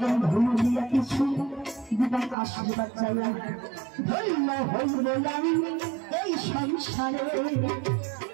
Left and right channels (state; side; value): drops out; left; at 2.4 s